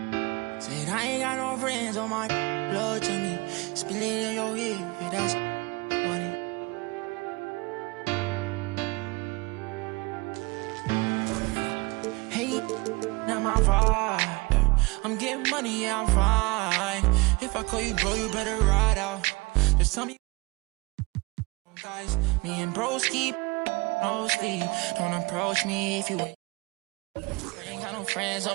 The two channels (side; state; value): left; quieter; 25.4 dB